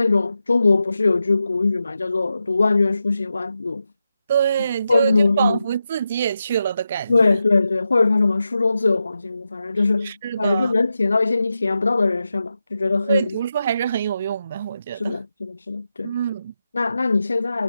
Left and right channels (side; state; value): both; inverted; correlation -0.89